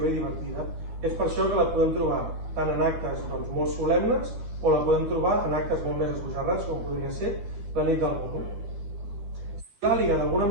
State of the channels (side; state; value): left; late; 13 ms